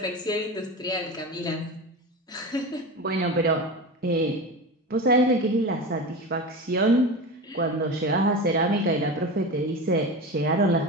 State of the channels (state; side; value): normal; both; correlation 0.26